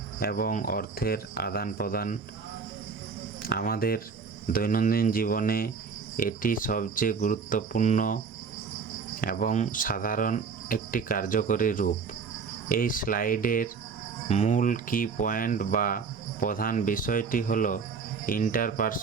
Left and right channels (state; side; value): quieter; left; 5.5 dB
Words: এবং অর্থের আদান প্রদান। আমাদের দৈনন্দিন জীবনে এটি সবচেয়ে গুরুত্বপূর্ণ এবং সাধারণ একটি কার্যকরী রূপ। এই স্লাইডের মূল কি পয়েন্ট বা প্রধান বিষয়টি হলো